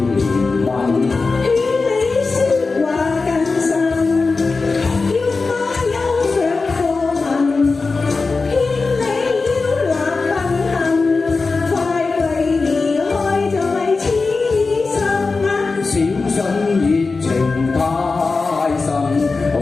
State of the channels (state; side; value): quieter; right; 4.1 dB